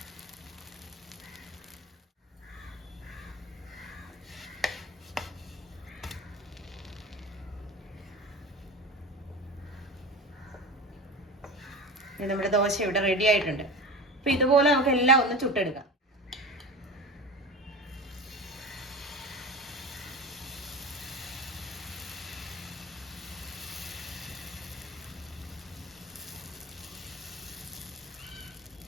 നമ്മുടെ ദോശ ഇവിടെ റെഡി ആയിട്ടുണ്ട്. അപ്പൊ ഇതുപോലെ നമുക്ക് എല്ലാം ഒന്ന് ചുട്ടെടുക്കാം.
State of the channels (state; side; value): normal; both; correlation 0.31